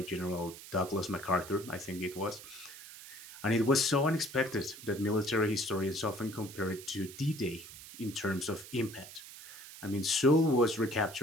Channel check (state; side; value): noise; right; hiss, 15 dB below the sound